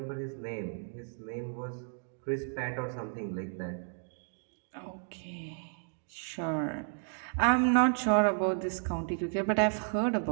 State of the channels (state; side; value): silent; left; 55 dB below the other